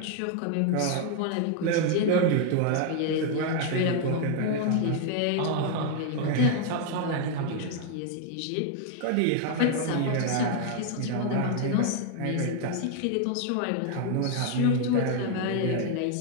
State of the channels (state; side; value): different; both; correlation 0.00